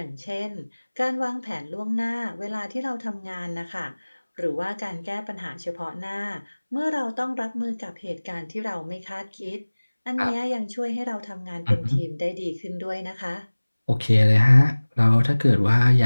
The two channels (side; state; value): both; inverted; correlation -1.00